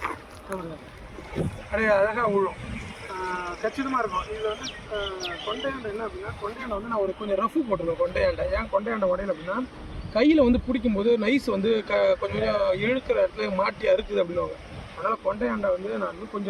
அப்படியே அழகாக விழும், கச்சிதமாக இருக்கும். இதில் வந்து கொண்டையாண்டை என்ன அப்படின்னா, கொண்டையாண்டை வந்து நான் ஒரு கொஞ்சம் ரஃபு போட்டிருக்கேன். கொண்டையாண்டை ஏன் கொண்டையாண்டை உடையில அப்படின்னா, கையில் வந்து பிடிக்கும்போது நைஸ் வந்து கொஞ்சம் இழுக்கிற இடத்துல மாட்டி அறுக்குது அப்படின்வாங்க. அதனால் கொண்டையாண்டை வந்து நான் வந்து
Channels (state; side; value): identical; both; correlation 1.00